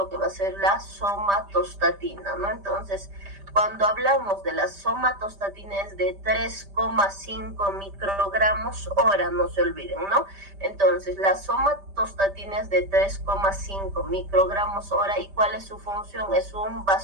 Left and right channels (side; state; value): left; late; 5.1 ms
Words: que va a ser la somatostatina, ¿no? Entonces, cuando hablamos de la somatostatina es de 3,5 microgramos hora, no se olviden, ¿no? Entonces, la somatostatina es de 3,5 microgramos hora. ¿Y cuál es su función? Es un